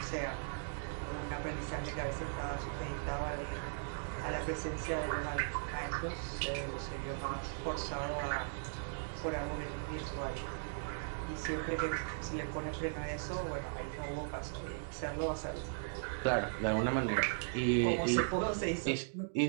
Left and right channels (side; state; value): left; silent; digital silence